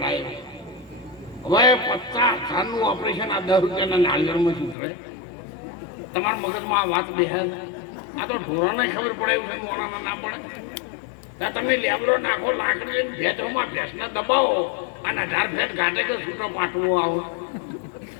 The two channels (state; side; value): drops out; right; at 4.8 s